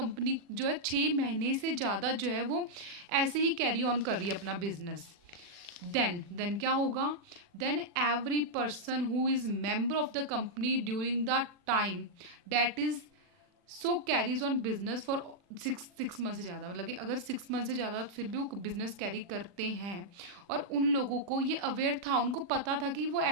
जो है 6 महीने से ज़्यादा जो है वो ऐसे ही कैरी ऑन कर रही है अपना बिजनेस, देन क्या होगा, then every person who is member of the company during the time that is so carries on business for six month से ज़्यादा, मतलब कि अगर 6 मंथ से ज़्यादा फिर भी वो बिजनेस कैरी करते हैं और उन लोगों को ये अवेयर था, उनको पता था कि वो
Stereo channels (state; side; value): late; left; 40 ms